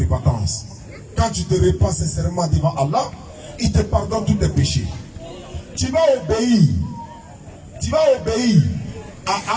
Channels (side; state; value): both; identical; correlation 1.00